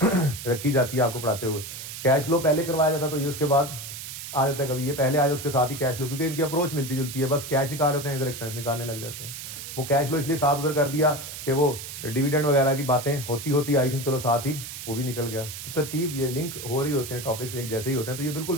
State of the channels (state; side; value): noise; right; hiss, 9 dB below the sound